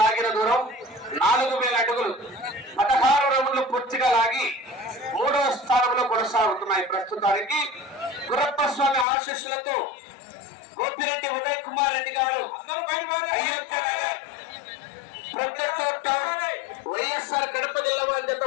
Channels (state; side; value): drops out; right; at 9.1 s